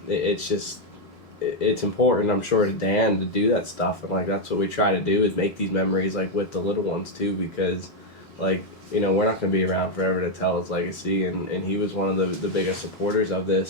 it's just. It's important, I'm sure, to Dan to do that stuff, and like that's what we try to do, is make these memories like with the little ones too, because like we're not going to be around forever to tell his legacy, and he was one of the biggest supporters of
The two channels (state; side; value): normal; both; correlation 0.02